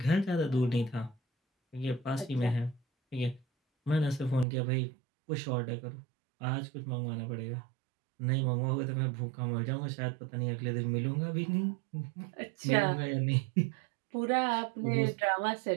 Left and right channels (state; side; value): drops out; left; at 4.5 s